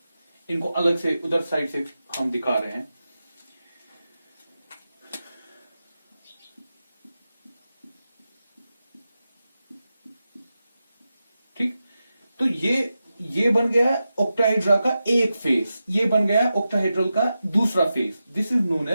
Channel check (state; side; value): inverted; both; correlation -0.91